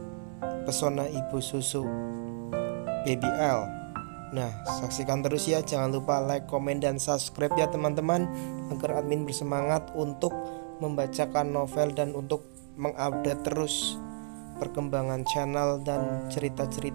Pesona Ibu Susu Baby L. Nah, saksikan terus ya. Jangan lupa like, komen, dan subscribe ya teman-teman, agar admin bersemangat untuk membacakan novel dan untuk mengupdate terus perkembangan channel dan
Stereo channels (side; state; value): left; silent; digital silence